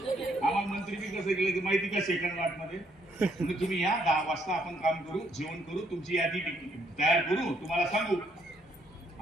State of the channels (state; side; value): normal; both; correlation 0.70